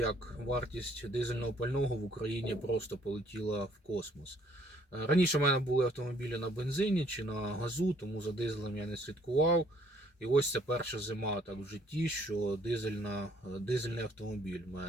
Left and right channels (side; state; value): both; normal; correlation 0.63